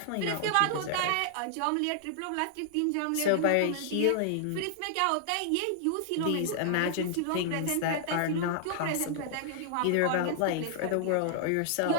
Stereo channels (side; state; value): both; different; correlation -0.01